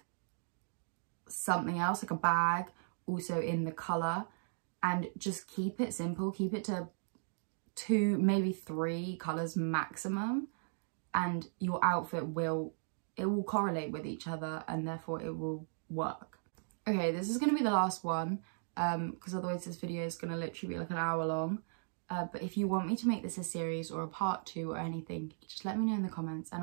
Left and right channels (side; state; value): left; silent; digital silence